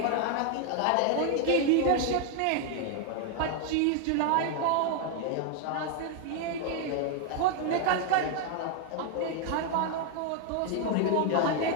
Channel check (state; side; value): different; both; correlation 0.00